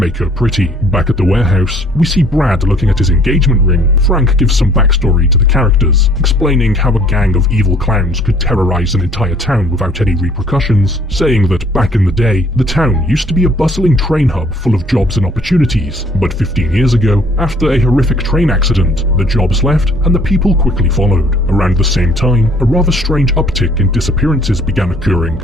her pretty. Back at the warehouse, we see Brad looking at his engagement ring. Frank gives some backstory to the characters, explaining how a gang of evil clowns could terrorize an entire town without any repercussions, saying that back in the day, the town used to be a bustling train hub full of jobs and opportunities, but 15 years ago, after a horrific train accident, the jobs left and the people quickly followed. Around the same same time, a rather strange uptick in disappearances began occurring,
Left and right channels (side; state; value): both; normal; correlation 0.58